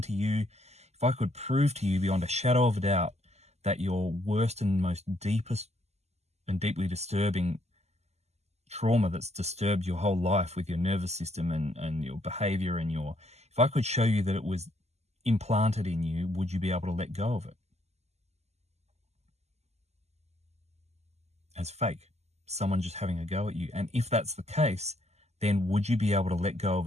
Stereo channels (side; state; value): left; late; 0.32 ms